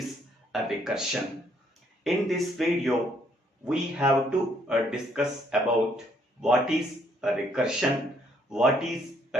a recursion. In this video we have to discuss about what is a recursion, what is a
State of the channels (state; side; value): normal; both; correlation 0.68